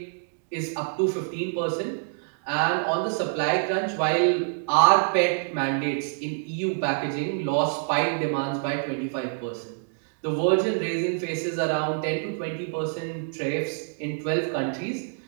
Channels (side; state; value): left; silent; digital silence